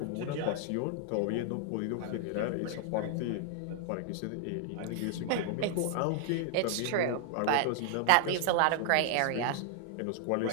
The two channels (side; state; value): both; different; correlation 0.00